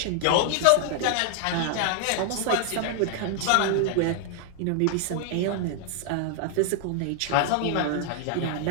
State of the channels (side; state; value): both; different; correlation 0.00